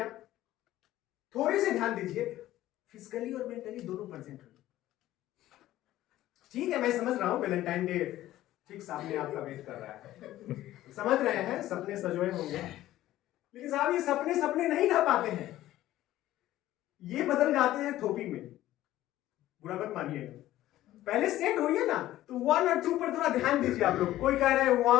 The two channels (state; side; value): quieter; right; 14.6 dB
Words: थोड़ी सी ध्यान दीजिए, फिजिकली और मेंटली दोनों परसेंट। ठीक है, मैं समझ रहा हूं वैलेंटाइन डे ठीक सामने आपका वेट कर रहा है, समझ रहे हैं, सपने सजोए होंगे, लेकिन साहब ये सपने सपने नहीं रह पाते हैं, ये बदल जाते हैं थोपी में। बुरा मत मानिएगा, पहले सेट होइए ना। तो 1 और 2 पर थोड़ा ध्यान दीजिए आप लोग। कोई कह रहे हैं